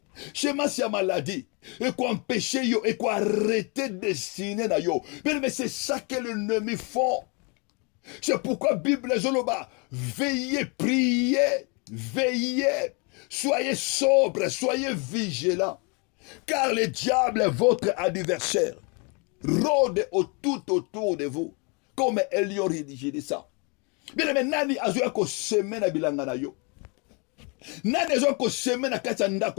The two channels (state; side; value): quieter; right; 32.7 dB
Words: semence ya maladie et quoi empêcher yo et quoi arrêter destiné na yo mais c'est ça que l'ennemi font. C'est pourquoi Bible zoloba veillez, priez, veillez, soyez sobres, soyez vigilants car le diable est votre adversaire rôde tout autour de vous comme Elion rédigé de ça. Bien aimé, nani azoya ko seme na bilanga na yo, nani azoya ko seme na kati ya